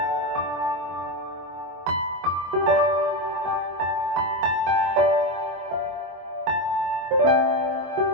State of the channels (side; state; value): left; late; 24 ms